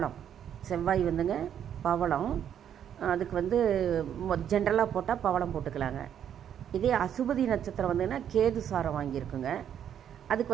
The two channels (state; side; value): quieter; left; 9.4 dB